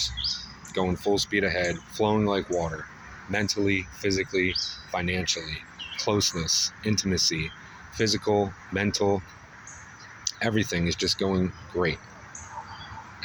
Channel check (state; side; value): identical; both; correlation 1.00